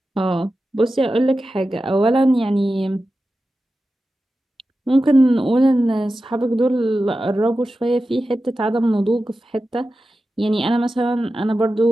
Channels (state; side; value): normal; both; correlation 0.93